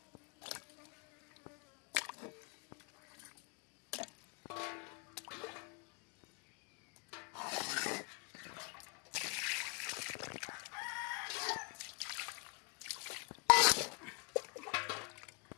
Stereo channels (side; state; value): right; quieter; 31.8 dB